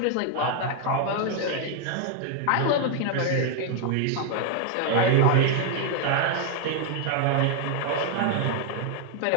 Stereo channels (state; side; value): different; both; correlation 0.00